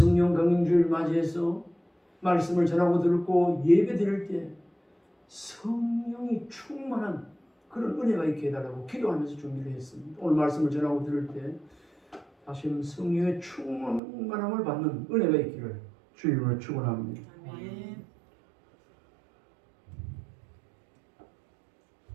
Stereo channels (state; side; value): drops out; left; at 14.0 s